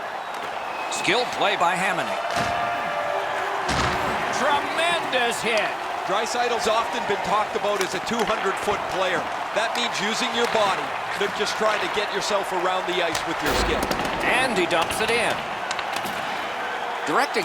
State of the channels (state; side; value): identical; both; correlation 1.00